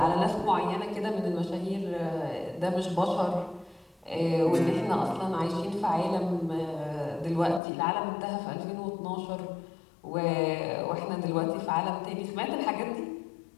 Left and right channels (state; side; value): drops out; right; at 7.6 s